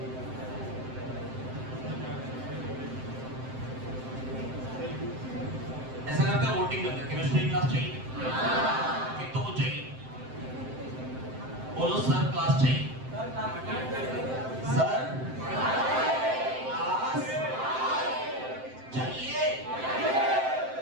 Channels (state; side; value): late; left; 7.7 ms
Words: ऐसा करते हैं, वोटिंग करते हैं। केमिस्ट्री क्लास चाहिए? एक तो वो चाहिए, बोलो सर क्लास चाहिए। सर क्लास चाहिए।